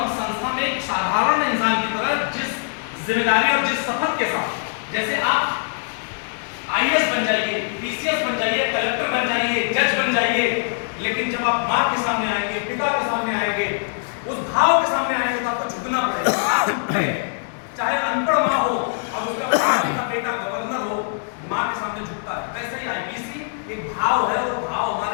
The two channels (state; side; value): silent; right; digital silence